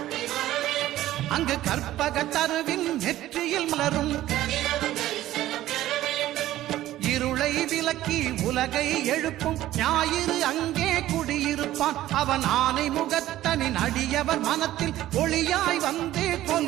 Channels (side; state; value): left; quieter; 14.3 dB